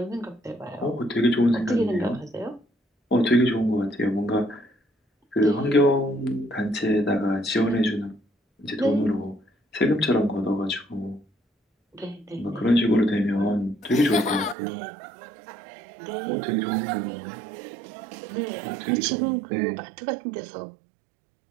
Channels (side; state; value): left; drops out; at 14.6 s